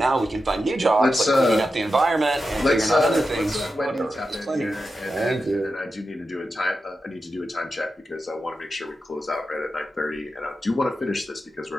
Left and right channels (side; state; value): both; normal; correlation 0.90